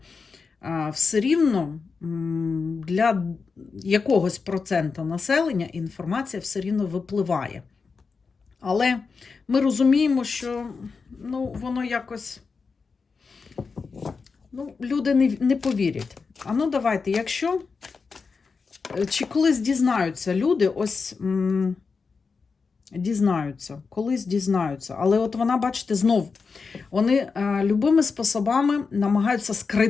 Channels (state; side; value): quieter; right; 4.9 dB